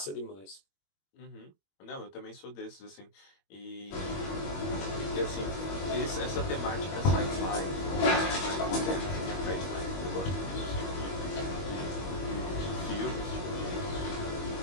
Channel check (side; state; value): right; late; 21 ms